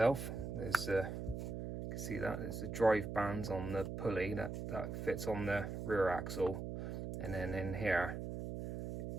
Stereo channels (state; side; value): noise; right; hum, 5 dB below the sound